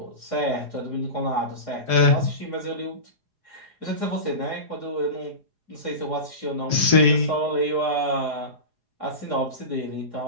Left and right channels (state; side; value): late; left; 4.8 ms